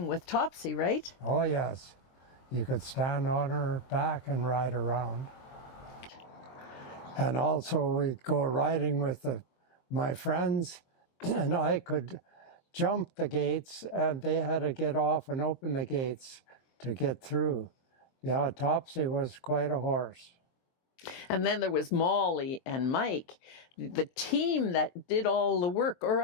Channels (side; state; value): right; late; 23 ms